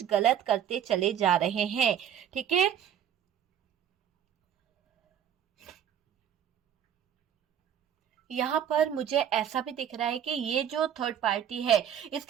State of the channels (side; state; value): left; quieter; 9.5 dB